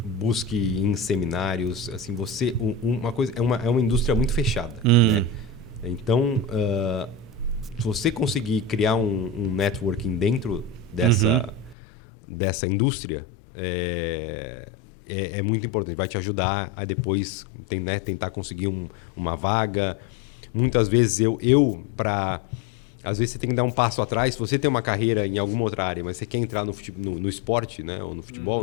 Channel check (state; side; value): drops out; right; at 11.8 s